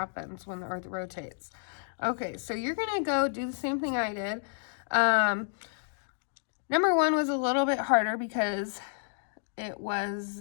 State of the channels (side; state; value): right; silent; digital silence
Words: when the Earth rotates. Okay, so you're going to go do the same thing I did. Number 1 was a little bit harder because it